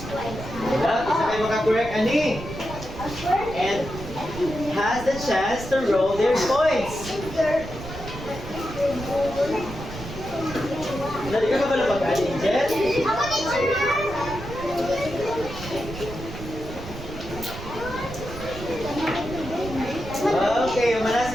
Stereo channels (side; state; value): right; noise; rumble, 11 dB below the sound